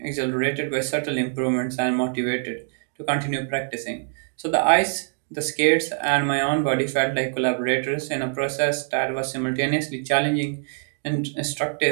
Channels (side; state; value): left; silent; 62 dB below the other